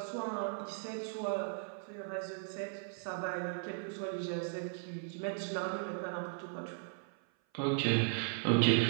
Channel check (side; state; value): left; silent; 53 dB below the other